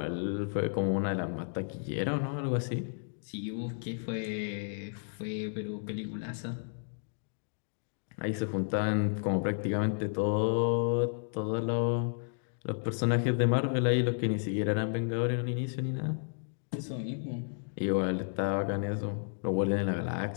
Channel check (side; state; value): right; silent; digital silence